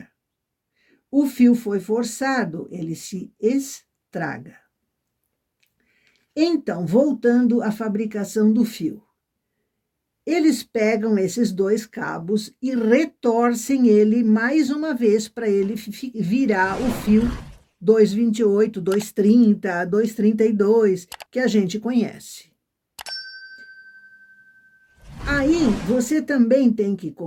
O fio foi forçado, ele se estraga. Então, voltando à fabricação do fio. Eles pegam esses 2 cabos e retorcem ele mais uma vez para ele virar o fio 228, 230, 232, que a gente conhece. Aí, você também tem que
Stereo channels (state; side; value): identical; both; correlation 1.00